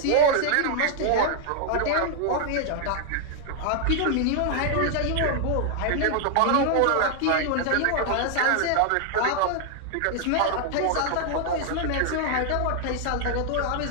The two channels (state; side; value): different; both; correlation 0.00